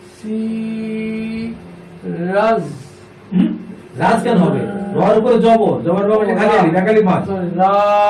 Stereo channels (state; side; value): identical; both; correlation 1.00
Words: সি রাজ রাজ কেন হবে রর উপরে জবর জবর বাবা খালি আলি একালি মাছ রা